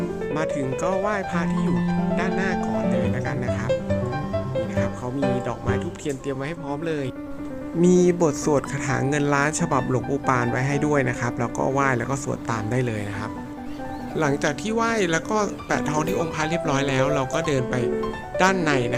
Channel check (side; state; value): both; identical; correlation 1.00